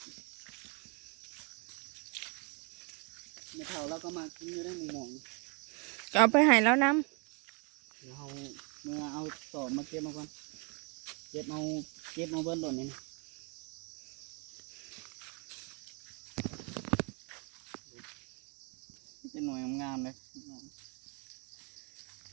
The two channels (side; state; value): left; quieter; 33.1 dB